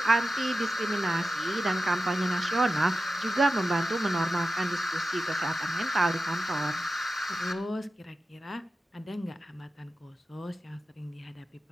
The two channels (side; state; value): both; normal; correlation 0.93